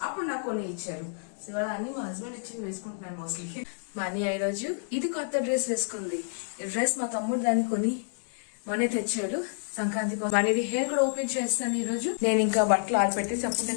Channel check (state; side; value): silent; right; digital silence